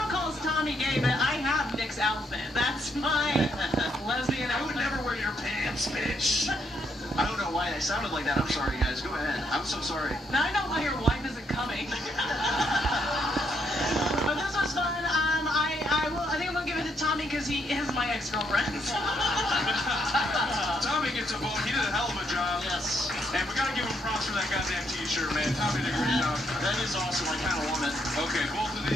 calls Tommy gay, but I have Nick's outfit. That's my lesbian I would outfit. never wear your pants, bitch. I don't know why I sounded like that. I'm sorry, guys. Go ahead. I'm so sorry. Now I know why your wife isn't coming. But this was fun. I think I'm gonna give it to Tommy because he is my ex-girlfriend. Tommy gets a vote. He did a hell of a job. Yes. And we gotta give him props for that goddamn t-shirt, man. Tommy did a great job. That is awesome. I kind of want it. Okay, both of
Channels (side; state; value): both; normal; correlation 0.75